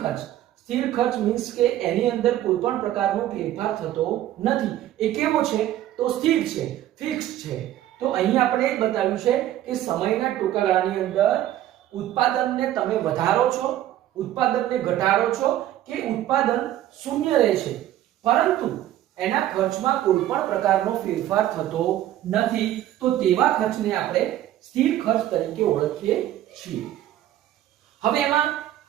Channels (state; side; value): quieter; left; 13.0 dB